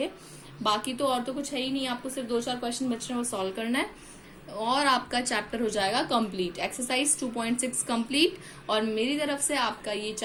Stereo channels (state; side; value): identical; both; correlation 1.00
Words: बाकी तो और तो कुछ है ही नहीं, आपको सिर्फ 2-4 क्वेश्चन बच रहे हैं वो सॉल्व करना है, और आपका चैप्टर हो जाएगा कंप्लीट। एक्सरसाइज 2.6 कंप्लीट, और मेरी तरफ से आपका ये